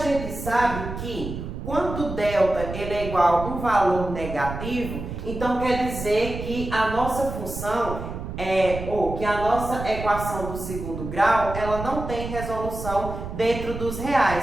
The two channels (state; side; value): noise; right; rumble, 8 dB below the sound